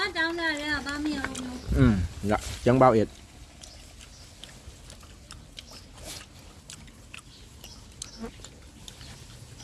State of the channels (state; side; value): identical; both; correlation 1.00